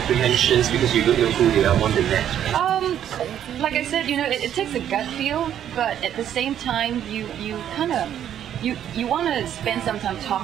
because you don't know who they are on the next? Like I said, it takes a gut feel, but at the same time, you kind of you want to spend some time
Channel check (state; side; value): quieter; left; 10.2 dB